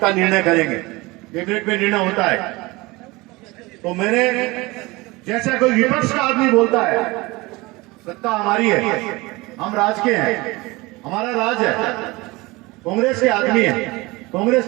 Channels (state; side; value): quieter; left; 22.7 dB